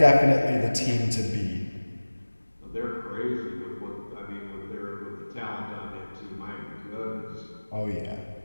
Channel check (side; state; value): both; inverted; correlation -1.00